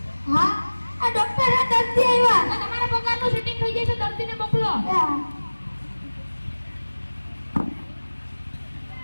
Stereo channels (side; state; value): both; inverted; correlation -1.00